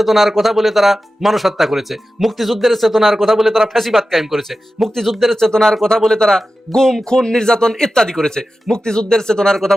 কথা বলে তারা মানুষ হত্যা করেছে, মুক্তিযুদ্ধের চেতনার কথা বলে তারা ফ্যাসিবাদ কায়েম করেছে, মুক্তিযুদ্ধের চেতনার কথা বলে তারা গুম, খুন, নির্যাতন ইত্যাদি করেছে, মুক্তিযুদ্ধের চেতনার কথা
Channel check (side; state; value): both; normal; correlation 0.93